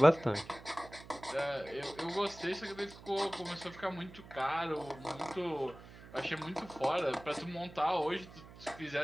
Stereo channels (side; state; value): right; noise; hum, 18 dB below the sound